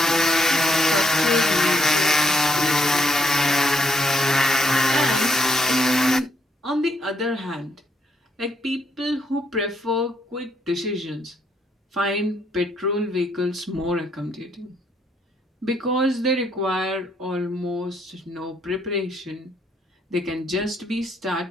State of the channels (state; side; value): normal; both; correlation 0.73